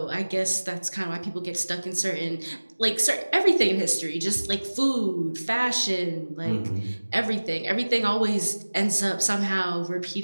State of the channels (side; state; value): both; inverted; correlation -1.00